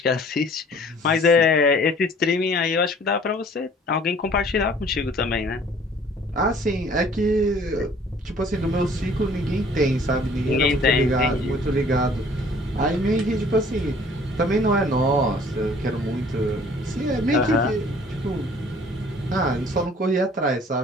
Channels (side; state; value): both; normal; correlation 0.54